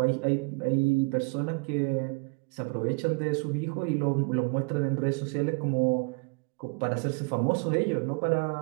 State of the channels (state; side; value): quieter; left; 33.0 dB